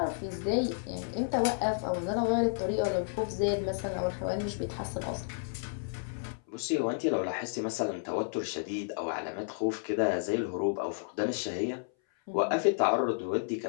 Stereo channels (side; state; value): right; silent; 57 dB below the other